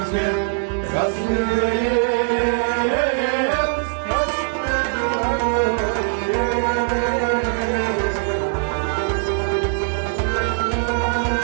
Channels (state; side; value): silent; left; digital silence